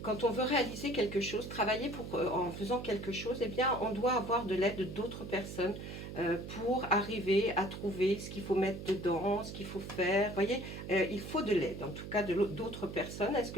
quand on veut réaliser quelque chose, travailler en faisant quelque chose, eh bien, on doit avoir de l'aide d'autres personnes pour arriver à trouver ce qu'il faut mettre dedans, ce qu'il faut faire. Vous voyez, il faut de l'aide, en tout cas d'autres personnes. Est-ce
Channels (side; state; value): right; noise; hum, 9 dB below the sound